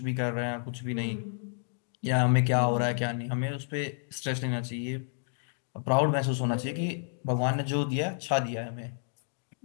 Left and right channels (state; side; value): silent; right; digital silence